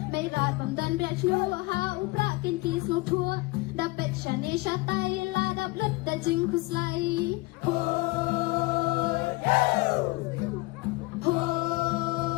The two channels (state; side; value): quieter; right; 22.8 dB